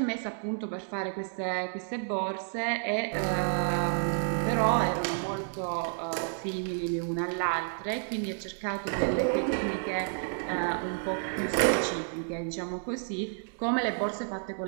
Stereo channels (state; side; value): silent; left; digital silence